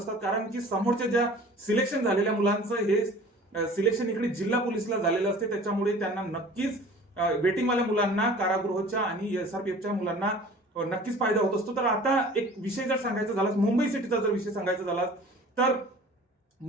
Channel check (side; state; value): both; normal; correlation 0.45